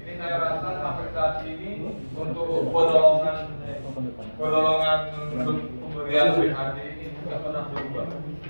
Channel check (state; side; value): inverted; both; correlation -1.00